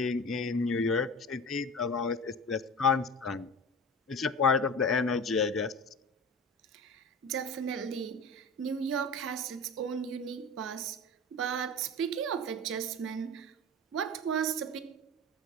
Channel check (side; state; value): both; normal; correlation 0.33